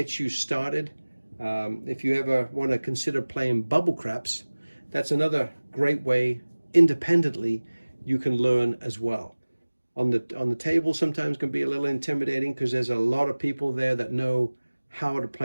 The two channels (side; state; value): both; inverted; correlation -1.00